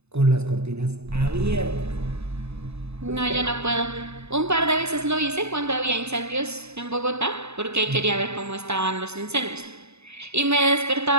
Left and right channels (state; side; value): late; left; 0.80 ms